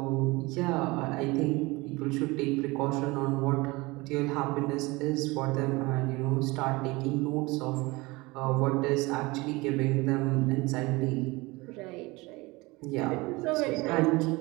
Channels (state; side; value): quieter; left; 23.2 dB